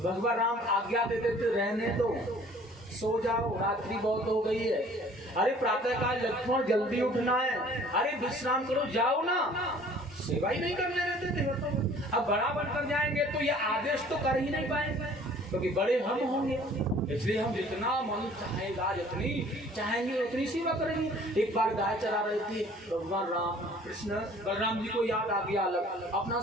भगवान राम आज्ञा देते थे रहने दो, सो जाओ, रात्रि बहुत हो गई है। अरे प्रातः काल लक्ष्मण जल्दी उठना है, अरे विश्राम करो, जाओ ना, सेवा ही नहीं करने देते थे। अब बड़ा बनकर जाएंगे तो ये आदेश तो कर ही नहीं पाएंगे, क्योंकि बड़े हम होंगे। इसलिए हम जितना मन चाहेगा, जितनी चाहेंगे उतनी सेवा करेंगे। एक बार गाय चरा रहे थे, भगवान राम कृष्ण बलराम जी को याद आ गया अपना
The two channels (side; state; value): both; normal; correlation 0.52